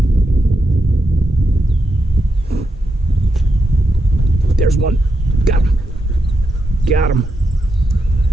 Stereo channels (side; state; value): both; normal; correlation 0.85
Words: There's one. Got him. Got him.